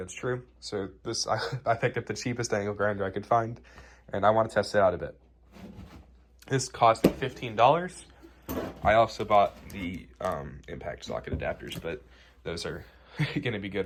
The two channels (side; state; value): both; identical; correlation 1.00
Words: true. So I picked up the cheapest angle grinder I could find, and I want to test it out a bit. This cost $15. I also bought the impact socket adapters, but those are going to be